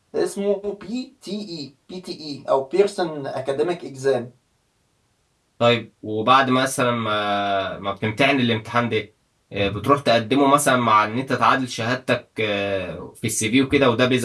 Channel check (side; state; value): both; identical; correlation 1.00